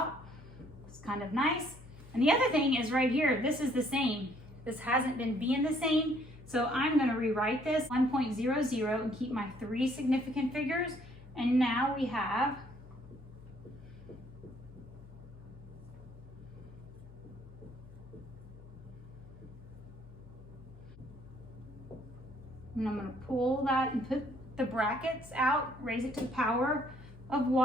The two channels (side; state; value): left; noise; hum, 19 dB below the sound